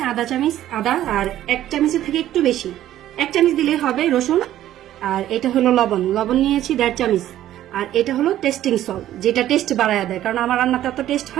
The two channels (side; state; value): left; quieter; 12.8 dB